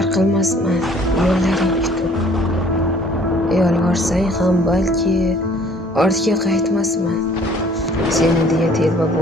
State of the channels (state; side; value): normal; both; correlation 0.56